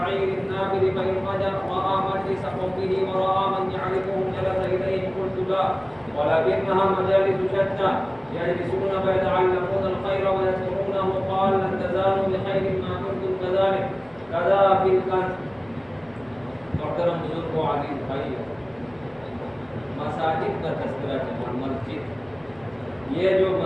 النابل فإن رأى مجلس قومه ورأى من يعرفهم جلس إليهم قلت لا ولكنها مجالس شتى يجلسون فيتعلمون الخير ويذكرونه قال لن تزالوا بخير ما كنتم كذلك كذا في الكنز. محترم بزرگ و عزیز بھائی، مساجد کا تذکرہ چلا. مسجد، یہ جو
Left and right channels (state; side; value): noise; left; hum, 30 dB below the sound